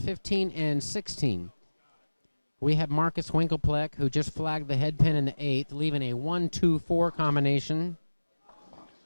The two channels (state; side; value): inverted; both; correlation -1.00